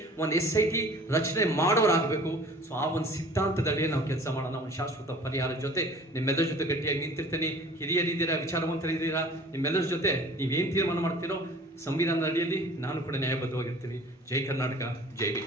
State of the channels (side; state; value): both; normal; correlation 0.47